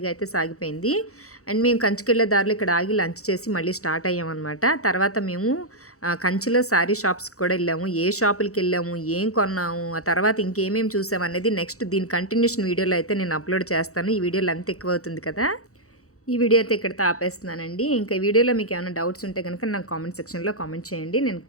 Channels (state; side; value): late; right; 0.65 ms